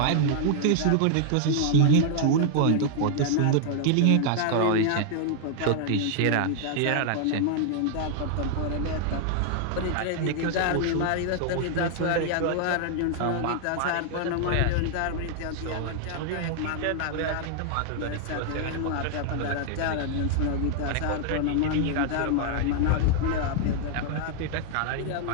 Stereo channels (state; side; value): different; both; correlation 0.00